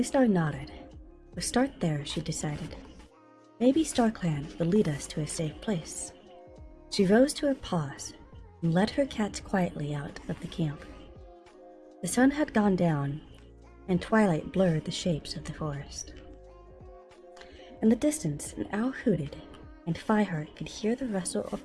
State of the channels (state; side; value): identical; both; correlation 1.00